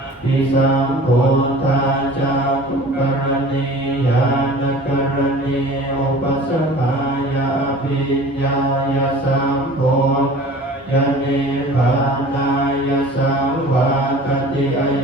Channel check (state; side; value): normal; both; correlation 0.43